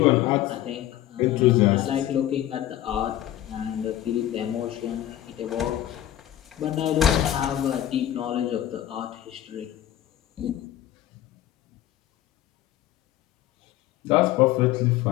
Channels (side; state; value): right; quieter; 12.9 dB